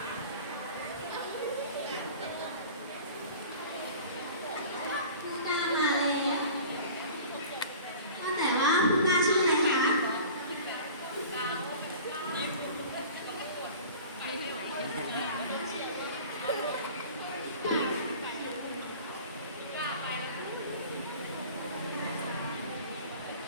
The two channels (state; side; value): inverted; both; correlation -0.41